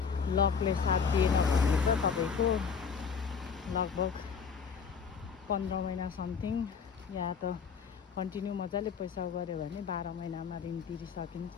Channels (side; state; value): right; quieter; 6.2 dB